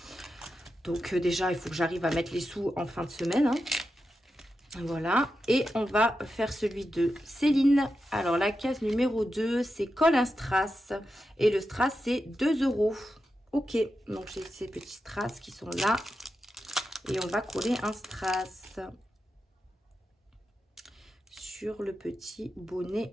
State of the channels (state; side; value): normal; both; correlation 0.89